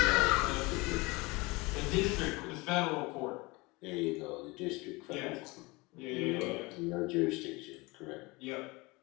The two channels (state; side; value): quieter; right; 24.5 dB